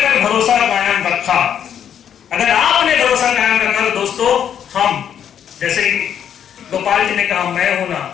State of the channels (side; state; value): right; quieter; 9.0 dB